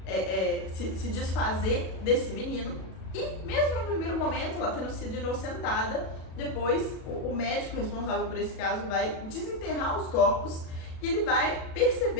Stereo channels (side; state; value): right; late; 37 ms